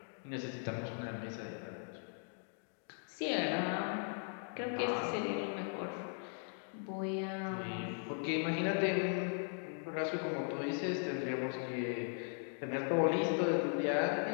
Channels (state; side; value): silent; right; 52 dB below the other